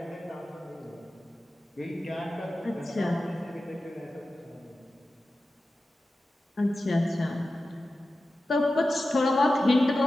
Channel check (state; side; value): normal; both; correlation 0.93